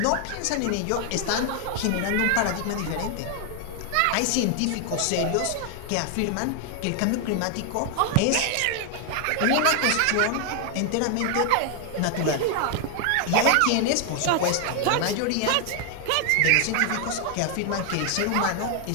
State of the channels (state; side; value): different; both; correlation 0.00